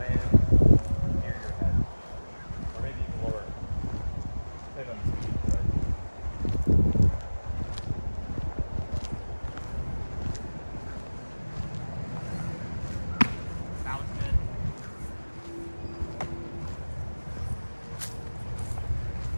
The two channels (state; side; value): inverted; both; correlation -1.00